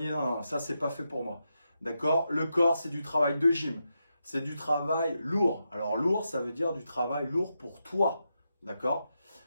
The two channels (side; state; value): both; inverted; correlation -0.86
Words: Non, ça, c'est pas fait pour moi. D'accord? Le corps, c'est du travail de gym. C'est du travail lourd. Alors lourd, ça veut dire du travail lourd pour toi. D'accord?